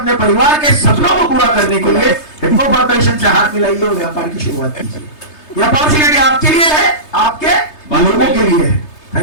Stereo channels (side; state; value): right; late; 3.3 ms